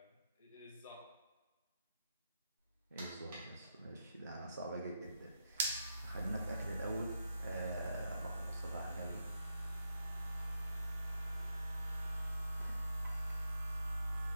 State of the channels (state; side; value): inverted; both; correlation -0.85